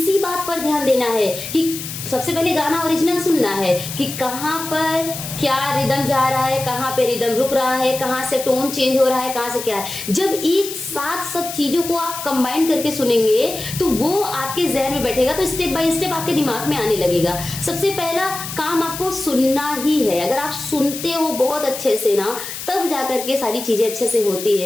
बात पर ध्यान देना है कि सबसे पहले गाना ओरिजिनल सुनना है कि कहाँ पर क्या रिदम जा रहा है, कहाँ पे रिदम रुक रहा है, कहाँ से टोन चेंज हो रहा है, कहाँ से क्या है। जब एक साथ सब चीजों को आप कंबाइन करके सुनेंगे तो वो आपके जहन में बैठेगा, तो स्टेप बाय स्टेप आपके दिमाग में आने लगेगा। सबसे पहला काम आपको सुनना ही है। अगर आप सुनते हो बहुत अच्छे से ना, तब जाकर के सारी चीजें अच्छे से होती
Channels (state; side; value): noise; left; hiss, 8 dB below the sound